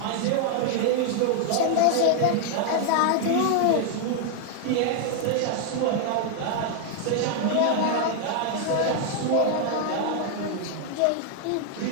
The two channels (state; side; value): different; both; correlation 0.00